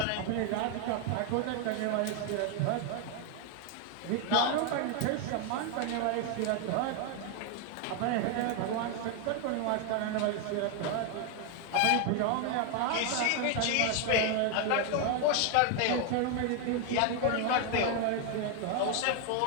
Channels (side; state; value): both; different; correlation 0.01